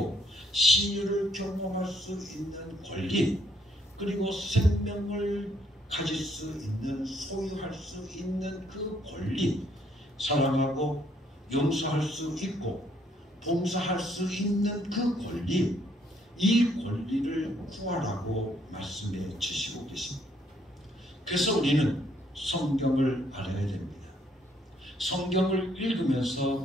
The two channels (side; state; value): both; normal; correlation 0.68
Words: 신유를 경험할 수 있는 권리, 그리고 생명을 가질 수 있는, 소유할 수 있는 그 권리, 사랑하고 용서할 수 있고 봉사할 수 있는 그 권리, 이 권리를 구하라고 말씀해 주시고 계십니다. 그래서 우리는 성경을 알아야 됩니다. 성경을